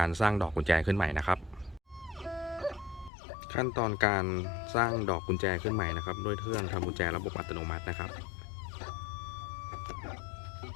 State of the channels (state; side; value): drops out; right; at 3.1 s